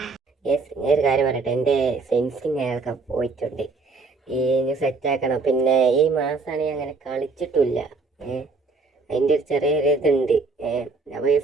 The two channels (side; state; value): left; quieter; 4.0 dB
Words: യെസ്. ഒരു കാര്യം പറയട്ടെ, എൻ്റെ സെൻസിങ് അയാൾക്ക് പോയിട്ടുണ്ട്. ഈ സെറ്റാക്കണം. പിന്നെ ഈ മാസമാണ് അങ്ങനെ കളിച്ചിട്ടില്ല. അതിൻ്റെ ഒരു ചെറിയൊരു ഇതുണ്ട്. അപ്പോൾ ഈ